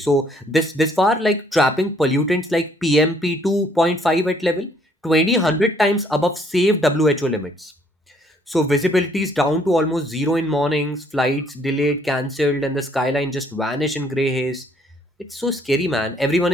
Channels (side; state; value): both; normal; correlation 0.64